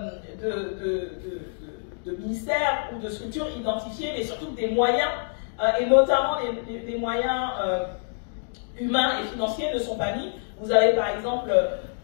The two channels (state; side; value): silent; right; digital silence